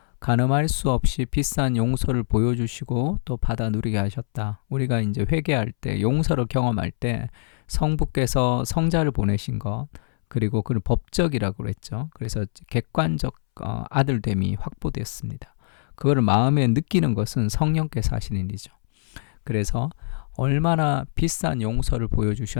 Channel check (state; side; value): silent; right; 63 dB below the other